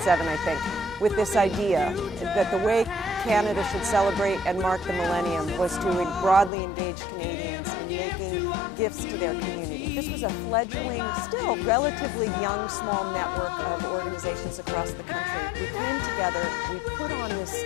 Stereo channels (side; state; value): right; drops out; at 6.5 s